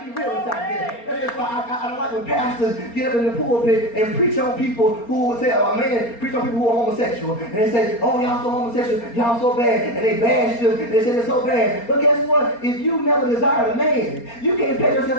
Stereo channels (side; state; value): right; late; 4.3 ms